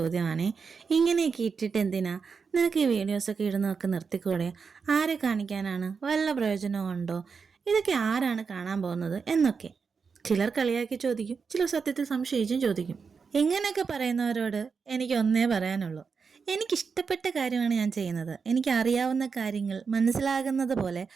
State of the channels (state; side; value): quieter; left; 5.5 dB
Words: ഇങ്ങനെയൊക്കെ ഇട്ടിട്ട് എന്തിനാ നിനക്ക് ഈ വീഡിയോസൊക്കെ ഇടുന്നതൊക്കെ നിർത്തിക്കൂടെ? ആരെ കാണിക്കാനാണ്? വല്ല പ്രയോജനവും ഉണ്ടോ? ഇതൊക്കെ ആരാണ് കാണാൻ പോകുന്നത് എന്നൊക്കെ ചിലർ കളിയാക്കി ചോദിക്കും, ചിലർ സത്യത്തിൽ സംശയിച്ചും ചോദിക്കും. ഇങ്ങനെയൊക്കെ പറയുന്നവരോട് എനിക്ക് ഒന്നേ പറയാനുള്ളൂ, എനിക്കിഷ്ടപ്പെട്ട കാര്യമാണ് ഞാൻ ചെയ്യുന്നത്. എനിക്ക് അറിയാവുന്ന കാര്യങ്ങൾ മനസ്സിലാകുന്നത് പോലെ